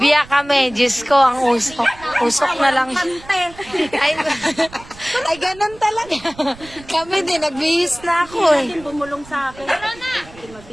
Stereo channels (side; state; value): right; noise; rumble, 20 dB below the sound